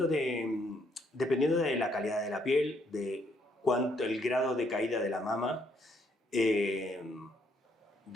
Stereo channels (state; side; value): normal; both; correlation 0.71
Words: Dependiendo de la calidad de la piel, de el grado de caída de la mama,